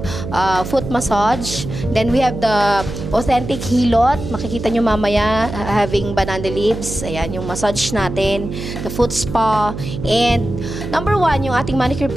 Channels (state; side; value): noise; right; hum, 7 dB below the sound